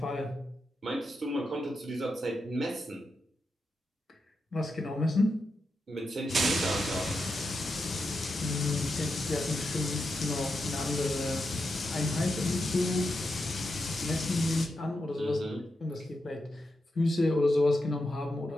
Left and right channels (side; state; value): both; normal; correlation 0.87